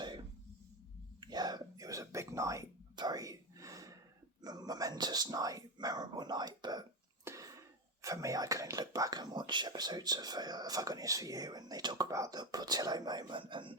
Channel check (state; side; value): normal; both; correlation 0.15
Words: yeah, it was a big night, very momentous night, memorable night. But for me, I can look back and watch episodes of Have I Got News For You, and they talk about the Portillo moment, and